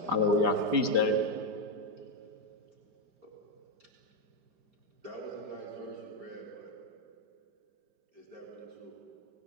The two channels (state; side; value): late; left; 5.0 ms